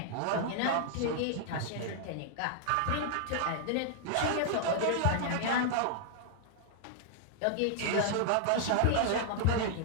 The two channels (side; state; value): both; different; correlation -0.01